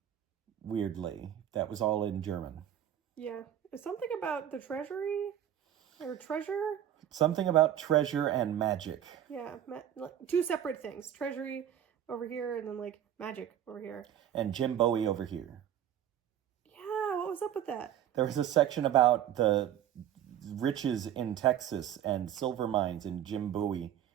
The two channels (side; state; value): left; quieter; 10.6 dB